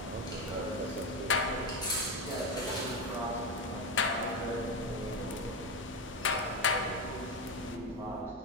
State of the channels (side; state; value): both; normal; correlation 0.14